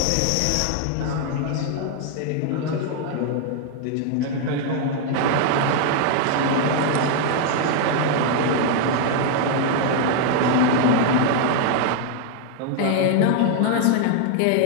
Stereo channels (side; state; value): both; different; correlation 0.00